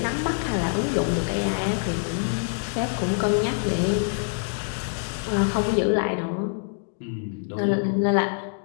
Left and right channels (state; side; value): silent; right; digital silence